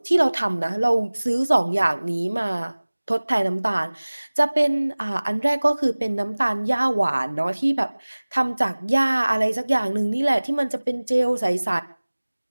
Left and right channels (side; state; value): both; inverted; correlation -1.00